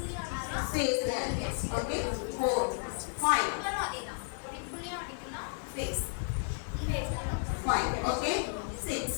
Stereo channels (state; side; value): silent; right; 56 dB below the other